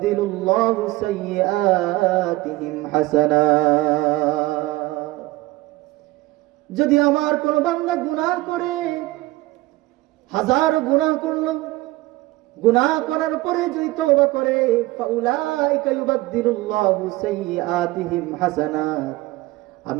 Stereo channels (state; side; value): quieter; left; 18.9 dB